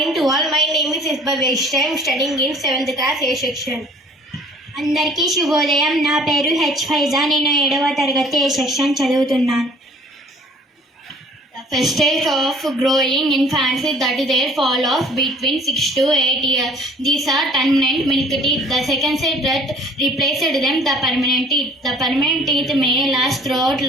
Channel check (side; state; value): both; normal; correlation 0.53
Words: to all. My name is Isba Vaishya. I am studying in 7th class A section. అందరికీ శుభోదయం. నా పేరు హెచ్ ఫైజా. నేను 7వ తరగతి ఏ సెక్షన్ చదువుతున్నాను. The first stage of growing infants is that their fall off between 6 to 8 years. These are permanent milk teeth. The second stage that replaced them the permanent teeth. The permanent teeth may last throughout